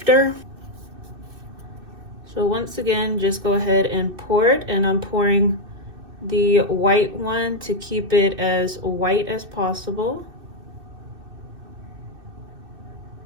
So once again, just go ahead and pour it, and I'm pouring the white one to keep it as white as possible.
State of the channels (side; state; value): left; late; 2.6 ms